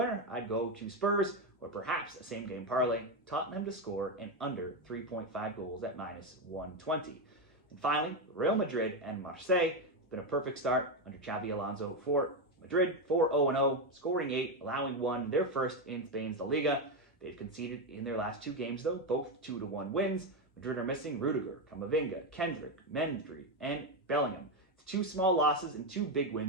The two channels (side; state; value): both; normal; correlation 0.09